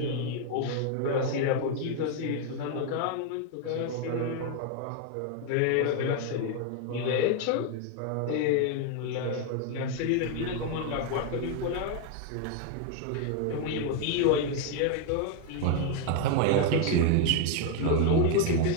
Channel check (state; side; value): different; both; correlation 0.01